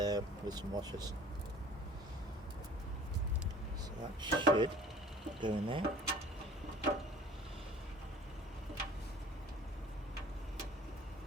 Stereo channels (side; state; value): both; normal; correlation 0.46